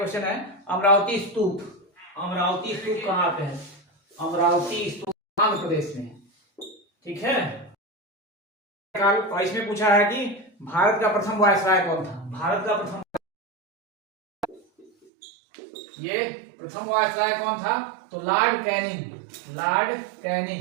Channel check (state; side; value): drops out; left; at 14.9 s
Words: है अमरावती स्तूप। अमरावती स्तूप कहाँ पे है? अमरावती स्तूप आंध्र प्रदेश में, ठीक है। और इसमें पूछा है कि भारत का प्रथम वायसराय कौन था? भारत का प्रथम, ये प्रथम वायसराय कौन था? तो लॉर्ड कैनिंग। लॉर्ड